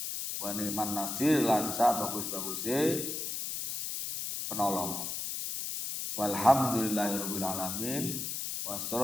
wa nikman nasir lan sa bagus-baguse penolong. Walhamdulillahirabbil alamin wa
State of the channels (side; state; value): left; noise; hiss, 4 dB below the sound